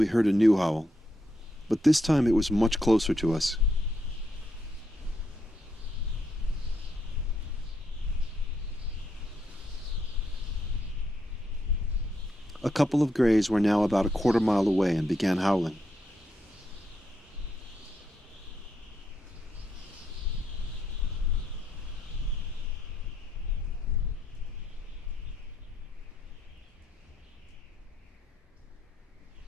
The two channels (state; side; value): normal; both; correlation 0.79